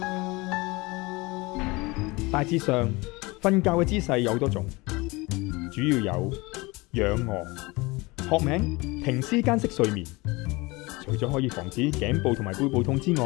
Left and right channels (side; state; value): right; quieter; 23.8 dB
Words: 嘅。大致上，瞓覺嘅姿勢有好多種，主要有仰臥。學名停屍間式睡眠，除咗可以防止頸部同埋背部痛之